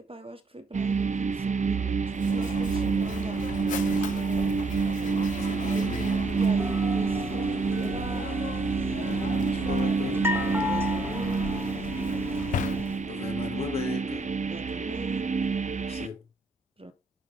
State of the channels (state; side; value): quieter; left; 3.2 dB